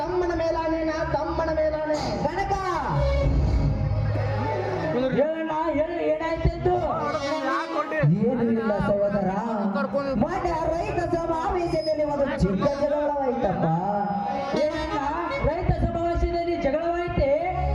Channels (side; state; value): both; identical; correlation 1.00